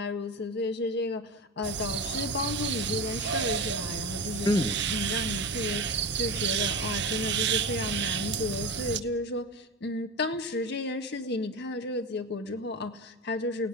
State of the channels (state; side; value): normal; both; correlation 0.24